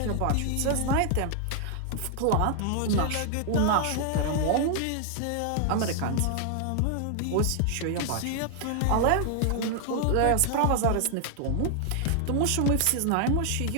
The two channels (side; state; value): both; different; correlation 0.00